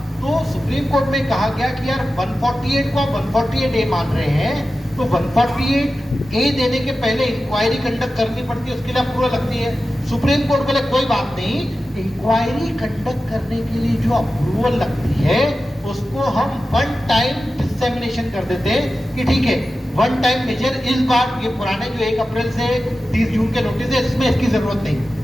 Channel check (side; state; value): both; normal; correlation 0.94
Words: तो सुप्रीम कोर्ट में कहा गया कि यार 148 को 148A मान रहे हैं, तो 148A देने के पहले इंक्वायरी कंडक्ट करनी पड़ती है, उसके लिए अप्रूवल लगती है। सुप्रीम कोर्ट बोले कोई बात नहीं, इंक्वायरी कंडक्ट करने के लिए जो अप्रूवल लगती है उसको हम वन टाइम डिसेमिनेशन कर देते हैं कि ठीक है वन टाइम मेजर। इस बार ये पुराने जो 1 अप्रैल से 30 जून के नोटिस है इसमें इसकी जरूरत नहीं।